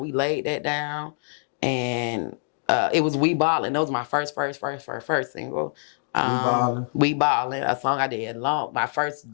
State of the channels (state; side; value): silent; right; 62 dB below the other